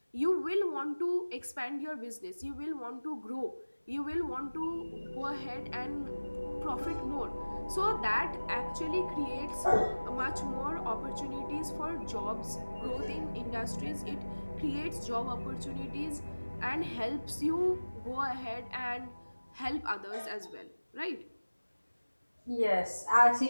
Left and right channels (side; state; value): both; inverted; correlation -1.00